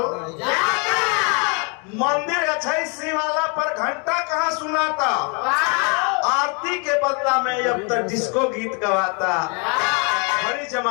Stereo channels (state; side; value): quieter; right; 35.4 dB